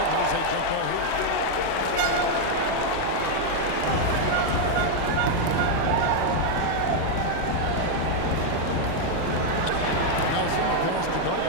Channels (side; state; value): both; different; correlation 0.00